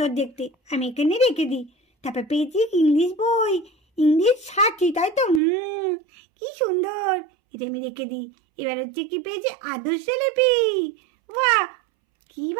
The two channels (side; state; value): left; drops out; at 5.4 s